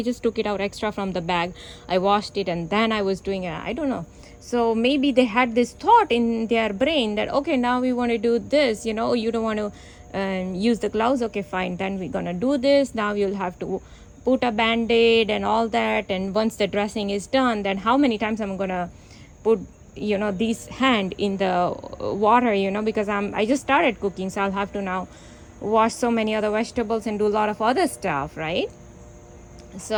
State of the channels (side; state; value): both; identical; correlation 1.00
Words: just took it out extra from the bag. I washed it and then I was doing it. I don't know. So maybe they had this thought in their brain that, okay, now we want to do this, you don't want to use the gloves. Okay, fine. Then we're going to do this. Now you'll have to put a band-aid and all that, and once the dressing is done, then how many times I'm gonna put this hand in the water, because I just started cooking, so I'll have to now wash so many other vegetables and do a lot of other stuff, right?